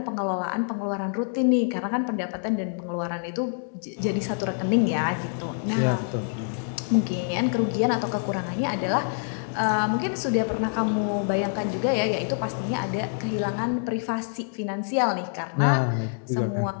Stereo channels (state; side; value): silent; right; digital silence